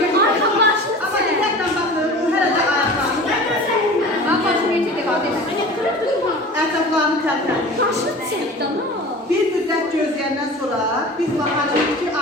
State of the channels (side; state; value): both; normal; correlation 0.38